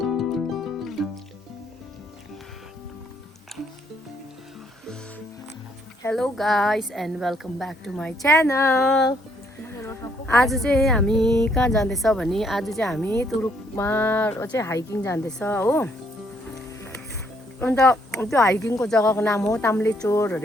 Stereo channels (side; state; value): both; normal; correlation 0.69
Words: guys and welcome back to my channel. आज चाहिँ हामी कहाँ जाँदैछ भने आज चाहिँ हामी तुरुकमा चाहिँ हाइकिङ जाँदैछ हो। अन्त त्यो हाइकिङको जग्गाको नाम हो ताम्लेचोर